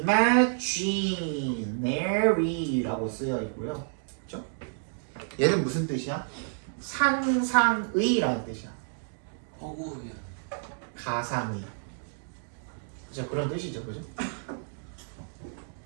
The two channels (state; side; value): silent; left; digital silence